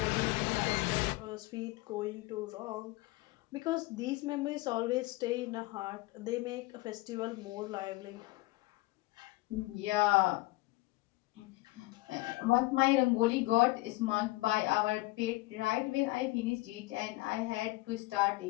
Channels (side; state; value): right; quieter; 21.0 dB